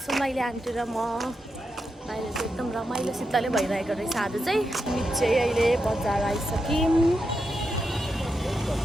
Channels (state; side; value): normal; both; correlation 0.86